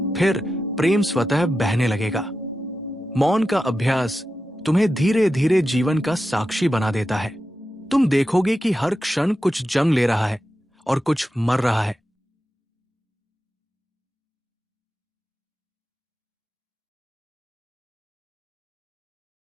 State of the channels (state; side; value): normal; both; correlation 0.91